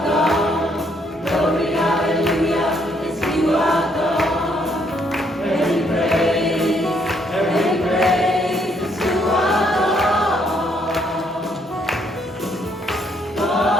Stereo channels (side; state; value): both; normal; correlation 0.70